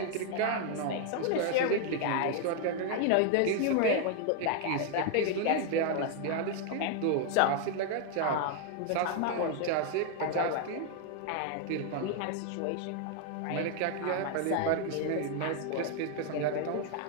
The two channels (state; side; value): different; both; correlation 0.00